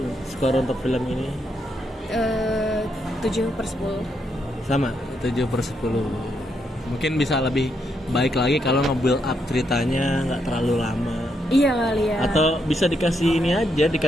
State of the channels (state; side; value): normal; both; correlation 0.79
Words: skor untuk film ini 7/10. sama 7/10. Mungkin bisa lebih baik lagi kalau nge-build up ceritanya nggak terlalu lama. Iya kali ya. Atau bisa dikasih ini aja,